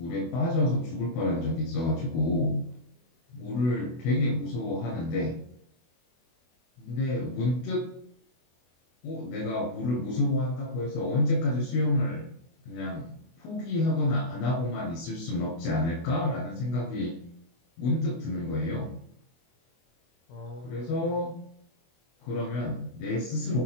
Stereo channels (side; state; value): right; late; 24 ms